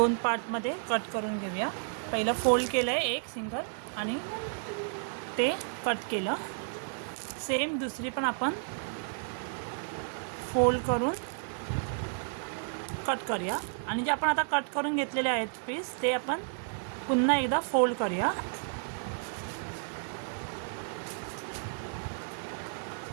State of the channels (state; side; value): silent; left; digital silence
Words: पार्टमध्ये कट करून घेऊया. पहिलं फोल्ड केलं आहे एक सिंगल आणि ते कट केलं. सेम दुसरी पण आपण फोल्ड करून कट करूया. आणि जे आपण आता कट करून घेतलेले आहेत पीस ते आपण पुन्हा एकदा फोल्ड करूया.